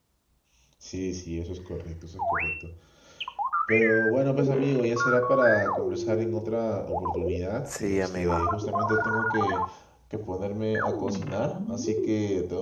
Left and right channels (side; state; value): both; identical; correlation 1.00